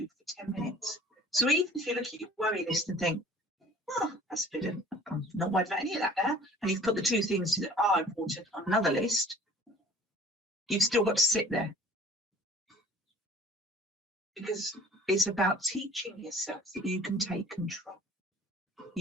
10 minutes. So even if you look at your worry list and think, oh, that's a bit of, I'm not worried about any of that now, and you've put the two things that are important on another list, you've still got to sit there. Because it's about teaching yourself that you can take control.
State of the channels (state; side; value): normal; both; correlation 0.49